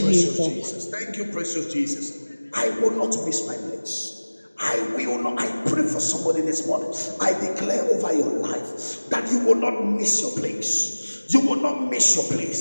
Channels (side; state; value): both; inverted; correlation -1.00